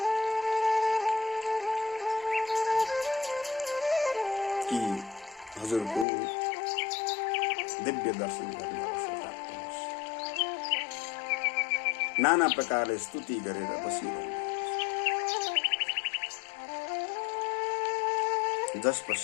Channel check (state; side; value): drops out; right; at 6.1 s